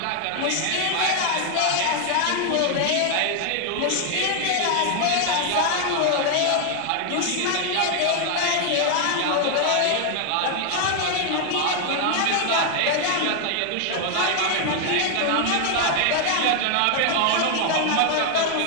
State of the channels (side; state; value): both; different; correlation 0.00